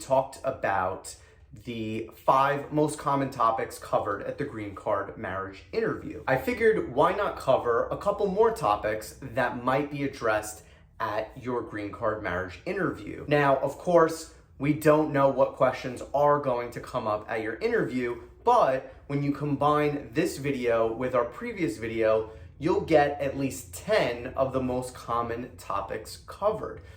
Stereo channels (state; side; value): identical; both; correlation 1.00